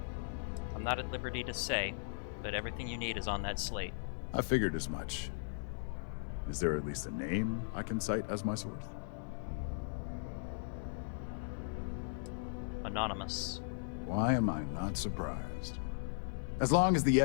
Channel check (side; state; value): right; silent; digital silence